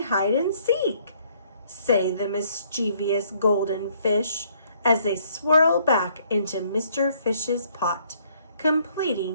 hide and seek, say the mischievous golden fish as they swirl back into Mr. Fish's pot,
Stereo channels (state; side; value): inverted; both; correlation -0.65